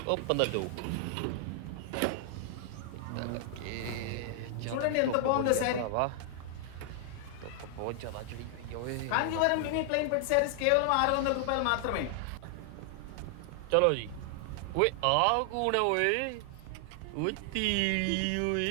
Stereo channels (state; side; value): different; both; correlation 0.00